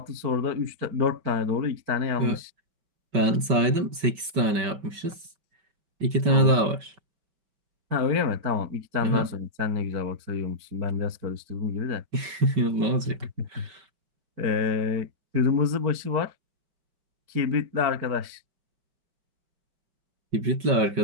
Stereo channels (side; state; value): left; late; 5.2 ms